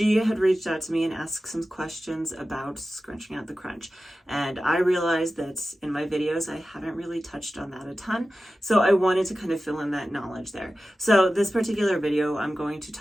had reached out to me and asked some questions about scrunching out the crunch. And I realized that in my videos, I haven't really touched on that a ton. So I wanted to kind of fill in that knowledge there. So this particular video, I'm going to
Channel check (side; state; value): both; normal; correlation 0.94